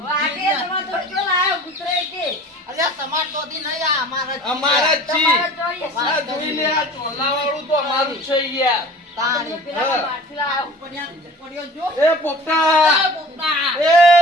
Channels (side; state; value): both; normal; correlation 0.44